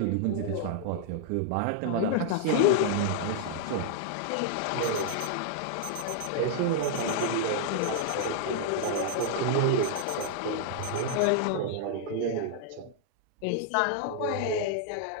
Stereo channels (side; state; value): both; different; correlation -0.01